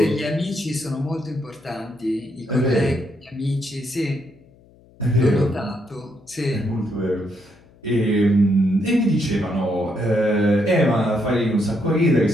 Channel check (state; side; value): noise; left; hum, 28 dB below the sound